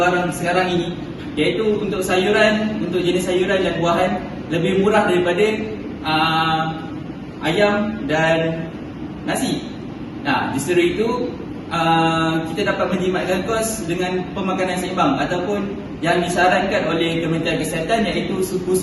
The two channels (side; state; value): both; identical; correlation 1.00